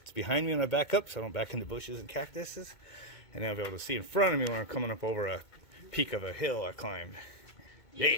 behind me when I back up, so I don't back into bushes and cactuses. And I'll be able to see in front of me when I'm coming up over a peak of a hill I climbed. Yeah!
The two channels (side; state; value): right; late; 2.2 ms